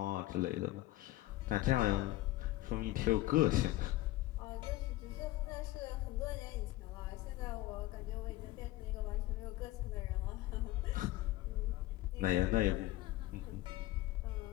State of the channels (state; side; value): quieter; right; 16.9 dB